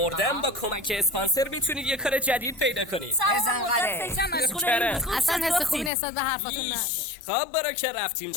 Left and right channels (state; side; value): drops out; right; at 5.9 s